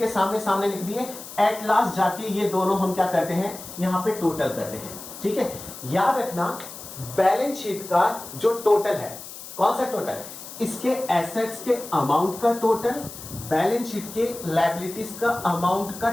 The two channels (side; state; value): left; noise; hiss, 13 dB below the sound